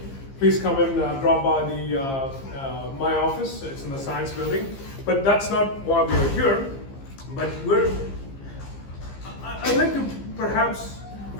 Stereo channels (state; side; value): late; right; 15 ms